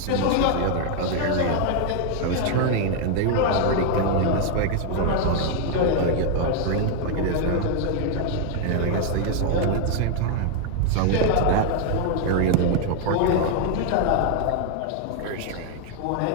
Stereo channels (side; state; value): both; different; correlation 0.00